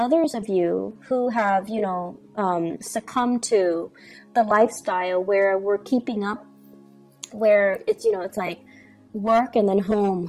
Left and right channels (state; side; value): identical; both; correlation 1.00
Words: of you who have, succumbed to the lifestyle where we're keeping up, where it's like work and then